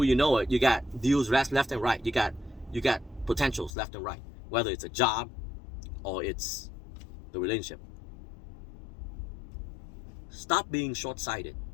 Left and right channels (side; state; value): right; drops out; at 3.7 s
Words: you know it, you got deals left and right. You got potentials left and right, whether it's a job or it's the relationship. Stop being short-sighted,